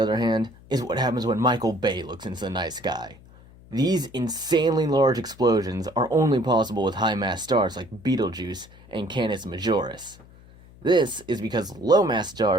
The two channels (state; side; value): noise; left; hum, 23 dB below the sound